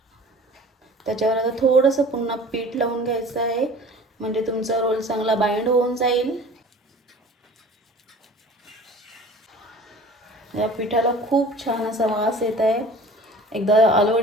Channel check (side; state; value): both; normal; correlation 0.44